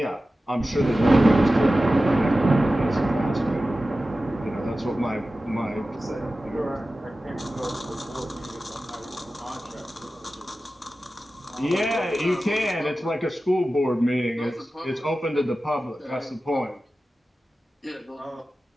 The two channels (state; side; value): normal; both; correlation 0.95